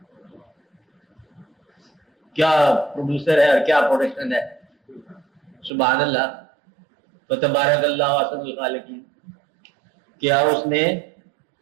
کیا پروڈیوسر ہے اور کیا پروڈکشن ہے. سبحان اللہ و تبارک اللہ احسن الخالقین. کیا اس نے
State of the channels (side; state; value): left; drops out; at 5.7 s